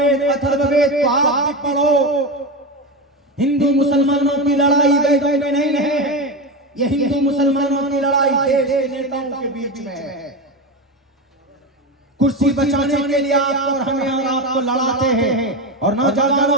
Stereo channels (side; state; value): both; normal; correlation 0.18